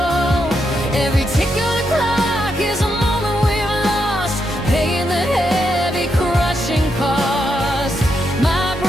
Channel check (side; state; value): both; normal; correlation 0.82